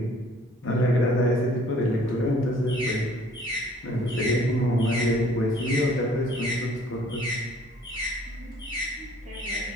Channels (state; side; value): normal; both; correlation 0.56